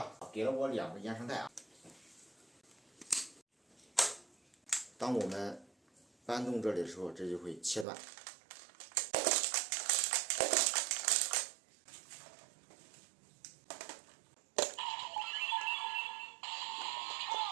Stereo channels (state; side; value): drops out; left; at 7.9 s